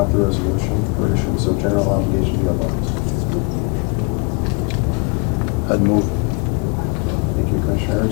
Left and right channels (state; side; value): quieter; right; 31.5 dB